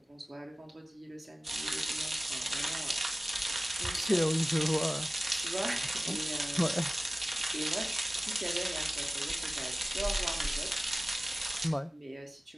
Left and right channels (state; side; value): normal; both; correlation 0.96